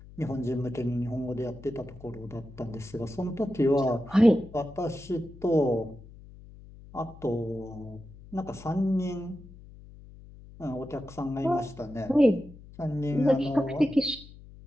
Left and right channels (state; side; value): noise; left; hum, 19 dB below the sound